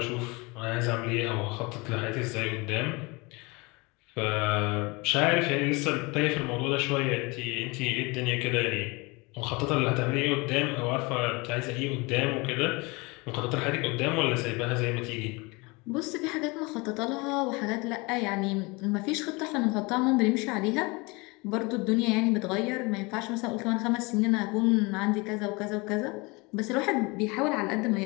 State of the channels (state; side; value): quieter; right; 26.3 dB